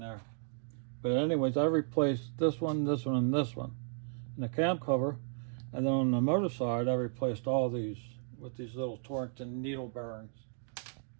there. But anyways, I replaced this one, and this one. And the cam cover And then on the motor side, I replaced all these with these little Torrington needle bearings.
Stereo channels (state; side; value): silent; left; digital silence